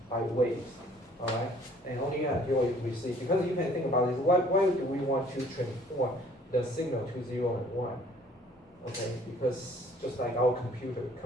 by waves, all right? And only until you receive, because you can think about this, why do we want to transform the signal to 0 and 1? Okay, because just like our computer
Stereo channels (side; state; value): both; normal; correlation 0.57